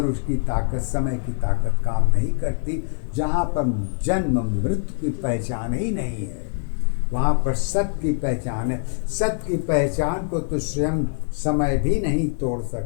उसकी ताकत, समय की ताकत काम नहीं करती। जहाँ पर जन्म मृत्यु की पहचान ही नहीं है वहाँ पर सत्य की पहचान है। सत्य की पहचान को तो स्वयं समय भी नहीं तोड़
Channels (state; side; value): silent; right; 62 dB below the other